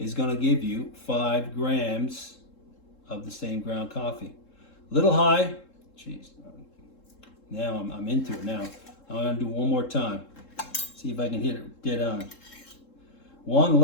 going to give you 5 grams of the same ground coffee. A little high. Jeez. Now I'm into it now. I'm going to do one more time. See if I can hit it dead on. 1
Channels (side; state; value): right; late; 3.7 ms